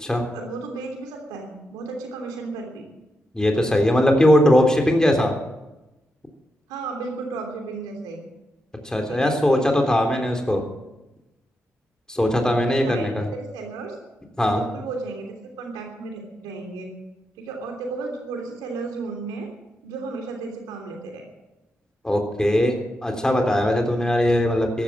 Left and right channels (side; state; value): both; normal; correlation 0.85